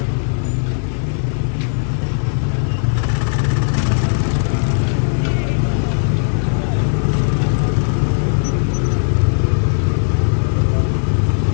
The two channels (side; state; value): right; silent; 68 dB below the other